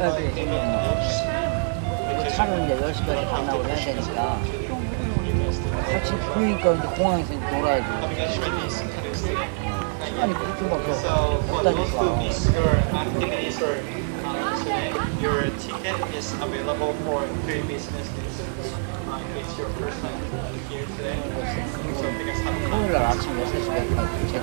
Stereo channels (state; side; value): silent; left; digital silence